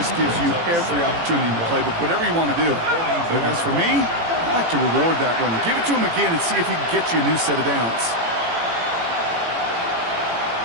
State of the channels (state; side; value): late; left; 18 ms